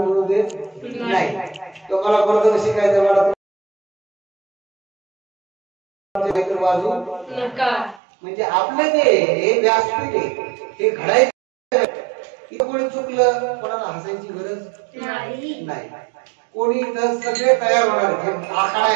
देत नाही. तो मला परत शिकायचं मला वाजू म्हणजे आपलं ते व्यासपीठ आहे, हे घडायचं. इथं कोणी चुकलं, कोणाला हसायची गरज नाही. कोणी इथं सगळे तयार होणार. आखाडा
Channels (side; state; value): left; drops out; at 8.0 s